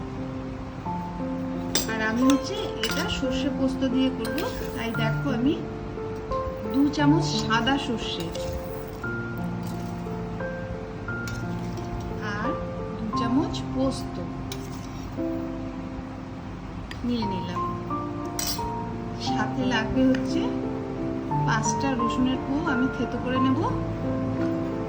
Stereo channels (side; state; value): both; identical; correlation 1.00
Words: আর আমি হচ্ছে এটা সর্ষে পোস্ত দিয়ে করব। তাই দেখো আমি 2 চামচ সাদা সর্ষে আর 2 চামচ পোস্ত নিয়ে নিলাম। সাথে লাগবে হচ্ছে 5টা রসুনের কোয়া আমি থেতো করে নেব,